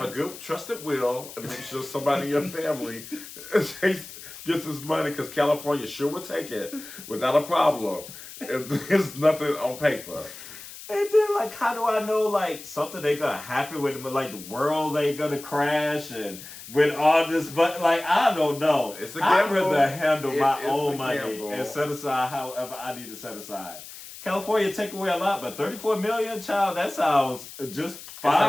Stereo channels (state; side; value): noise; left; hiss, 14 dB below the sound